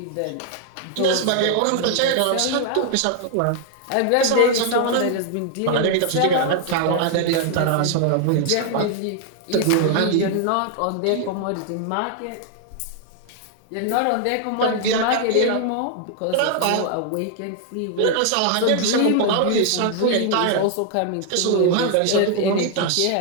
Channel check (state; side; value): different; both; correlation 0.00